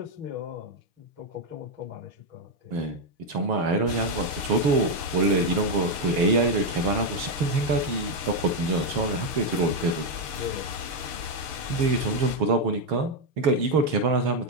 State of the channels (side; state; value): left; late; 6.5 ms